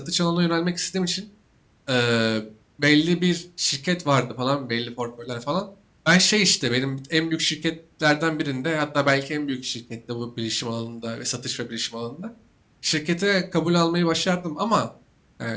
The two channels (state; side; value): identical; both; correlation 1.00